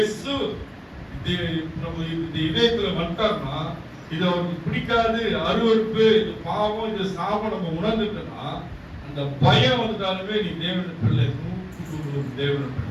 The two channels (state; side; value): identical; both; correlation 1.00